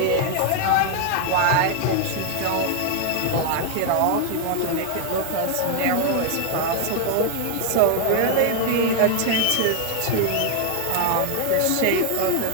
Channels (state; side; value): different; both; correlation 0.00